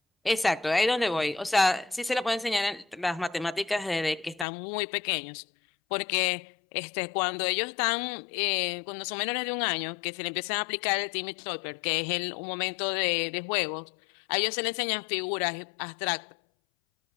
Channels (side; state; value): right; drops out; at 4.5 s